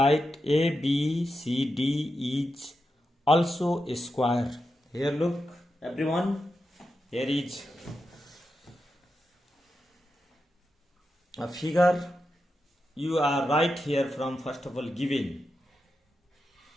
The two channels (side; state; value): both; normal; correlation 0.88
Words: ABCD is also a square. Here look everyone, here is a figure. You are right here from first of all given.